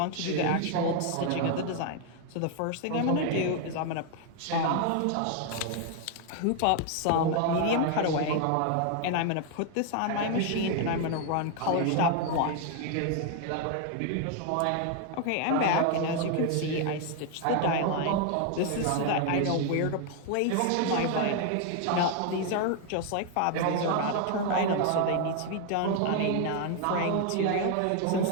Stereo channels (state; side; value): different; both; correlation 0.01